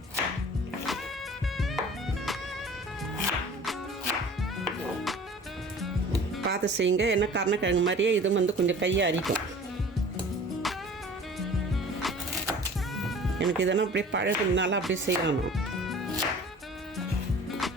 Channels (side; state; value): both; normal; correlation 0.45